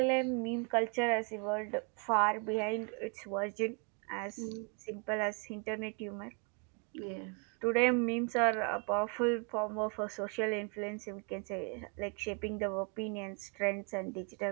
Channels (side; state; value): left; quieter; 36.8 dB